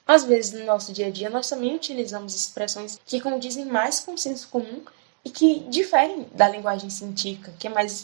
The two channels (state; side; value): silent; left; 61 dB below the other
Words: Às vezes, no nosso dia a dia, nós também utilizamos expressões que condizem mais com o senso comum e que diferem da linguagem científica, que é mais